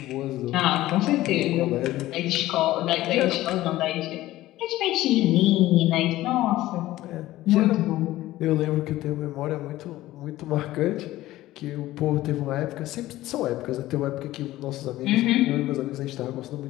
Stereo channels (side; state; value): right; quieter; 16.0 dB